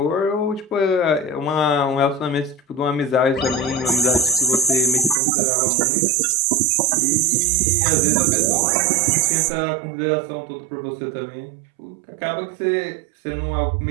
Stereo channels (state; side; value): drops out; left; at 5.2 s